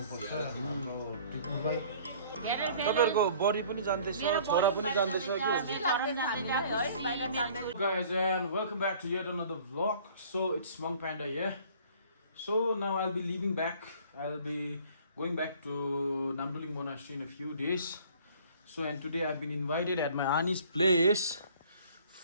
हाम्रो टिपुलाई। तपाईहरुको बडी पनि जान्दैछ, छोरा पनि जान्दैछ कि? Guys, and welcome back to yet another vlog. So it's Monk Panda here. So now I'll be leaving back. I'll be going back to Namduling Monastery in a few days. So and today I've been invited at my auntie's place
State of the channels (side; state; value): both; inverted; correlation -0.52